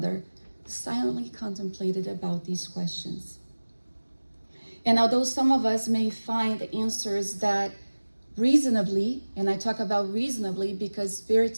silently contemplated about these questions. And although some of us may find answers that reasonably, and I talk about reasonably because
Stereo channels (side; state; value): both; inverted; correlation -1.00